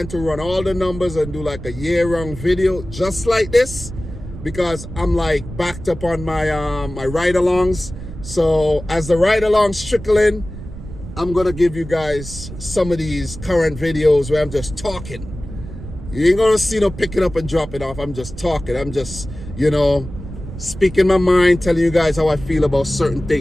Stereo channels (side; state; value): right; noise; rumble, 12 dB below the sound